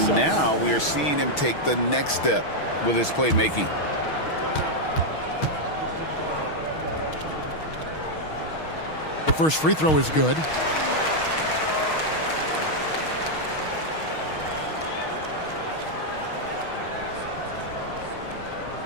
now we are seeing him take the next step with his playmaking. The first free throw is good.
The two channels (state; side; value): late; right; 6.3 ms